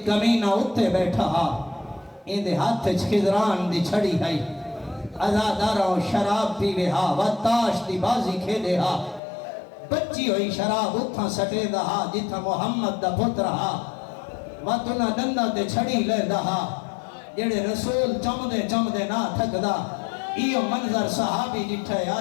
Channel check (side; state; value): right; drops out; at 9.2 s